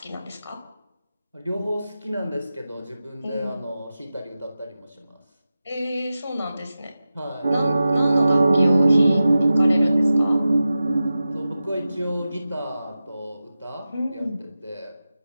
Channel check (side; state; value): both; inverted; correlation -0.94